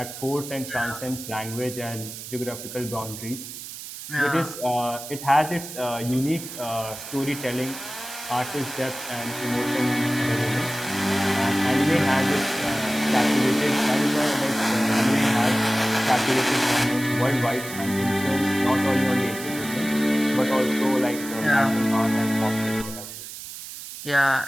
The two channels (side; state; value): right; noise; hiss, 11 dB below the sound